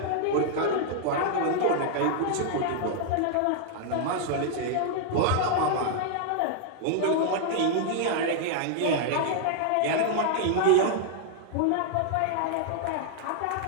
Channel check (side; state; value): both; different; correlation -0.01